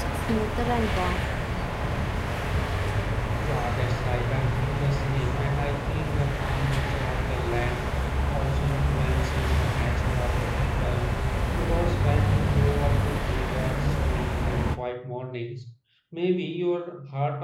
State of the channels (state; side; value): identical; both; correlation 1.00